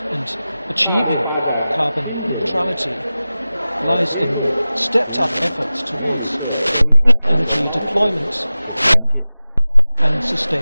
and achieving carbon neutrality lies in stepped-up efforts towards energy deployment and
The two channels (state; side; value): inverted; both; correlation -0.96